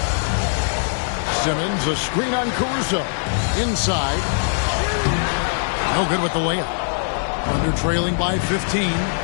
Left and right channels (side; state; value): right; silent; digital silence